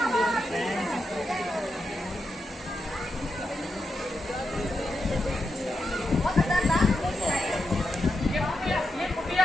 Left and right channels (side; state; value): both; normal; correlation 0.86